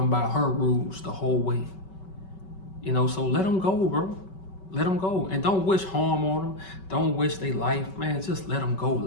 by her rules the whole way. So let them go, bro. Let them go. And don't wish harm on them. Don't wish their life, man. Just let them go.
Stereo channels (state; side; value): late; right; 5.3 ms